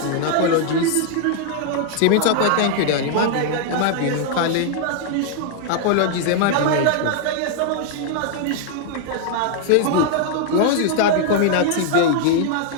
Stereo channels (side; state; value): both; different; correlation 0.00